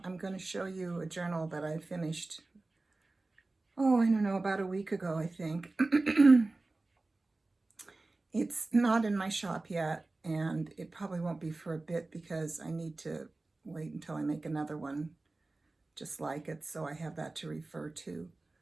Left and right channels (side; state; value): left; quieter; 3.2 dB